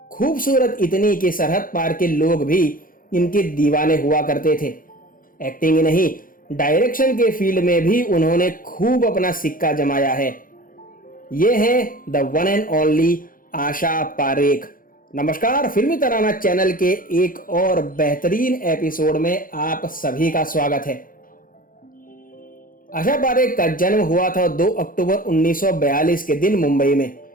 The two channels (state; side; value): late; right; 0.40 ms